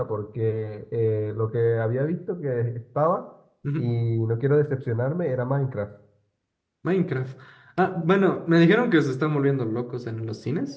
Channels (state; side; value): identical; both; correlation 1.00